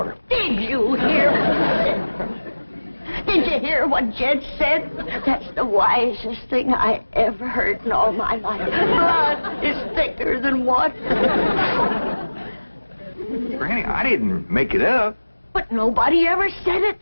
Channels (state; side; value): inverted; both; correlation -1.00